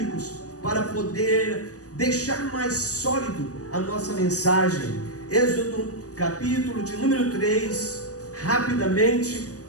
para poder deixar mais sólido a nossa mensagem. Êxodo, capítulo de número 3, Rapidamente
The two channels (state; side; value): late; right; 0.66 ms